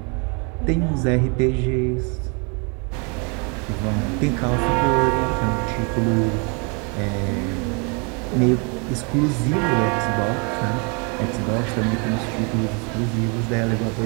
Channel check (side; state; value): left; quieter; 34.4 dB